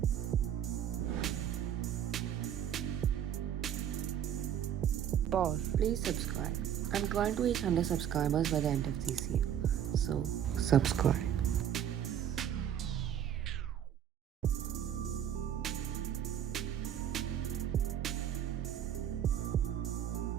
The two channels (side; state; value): left; quieter; 9.8 dB